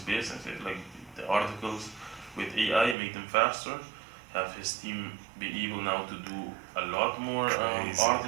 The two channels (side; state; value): left; drops out; at 3.0 s